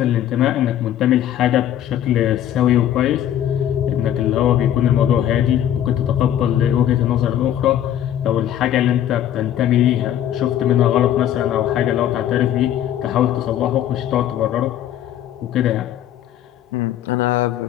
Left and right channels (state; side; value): quieter; right; 11.1 dB